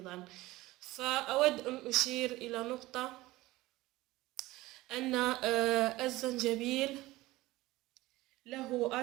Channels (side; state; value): left; quieter; 18.6 dB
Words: فأود أن أشير إلى نقطة، أن الزنجبيل له